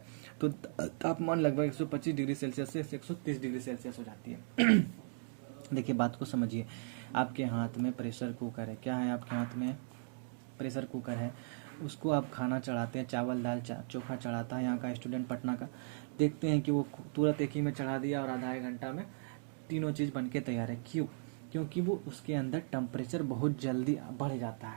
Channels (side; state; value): left; silent; digital silence